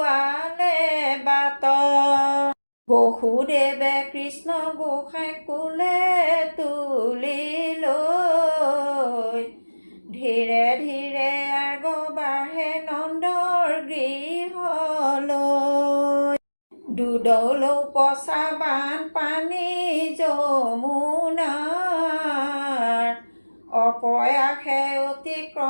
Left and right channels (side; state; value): both; inverted; correlation -1.00